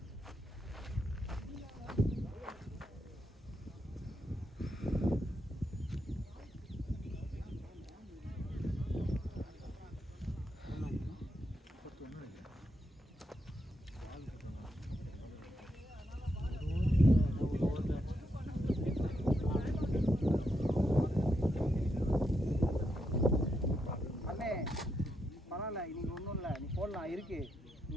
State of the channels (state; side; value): normal; both; correlation 0.82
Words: இன்னைக்கு ஒன்றும் இல்லை நீ போடலாம் இருக்கு